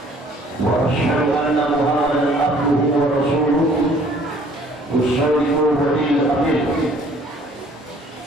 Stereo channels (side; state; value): both; normal; correlation 0.57